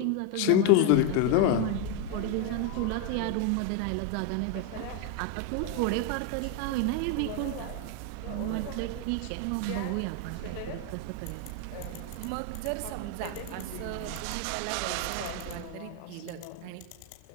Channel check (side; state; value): both; different; correlation 0.01